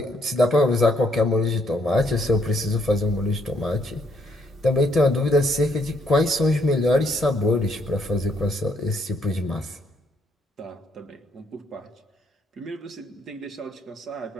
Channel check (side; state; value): both; normal; correlation 0.71